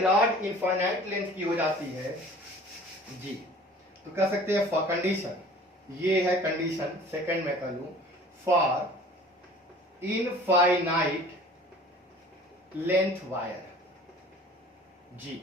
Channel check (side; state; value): both; normal; correlation 0.47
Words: इनफाइनाइट लेंथ की हो जाती है जी, तो कह सकते हैं फॉर कंडीशन, ये है कंडीशन सेकंड में कर लूं, फॉर इनफाइनाइट लेंथ वायर, जी